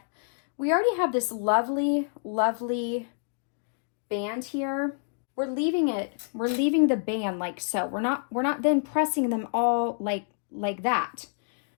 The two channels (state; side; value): silent; right; digital silence